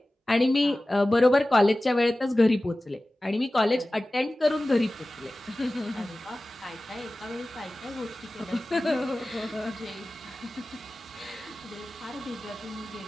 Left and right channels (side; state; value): both; normal; correlation 0.96